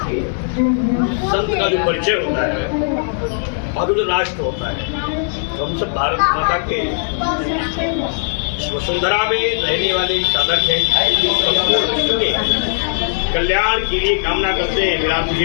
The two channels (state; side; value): silent; right; digital silence